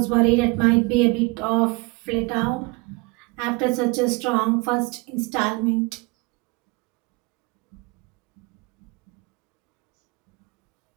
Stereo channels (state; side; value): quieter; left; 26.7 dB